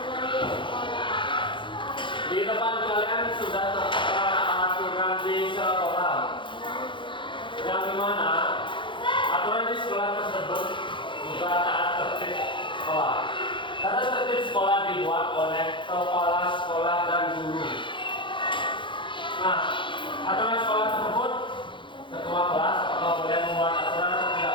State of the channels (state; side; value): late; right; 0.24 ms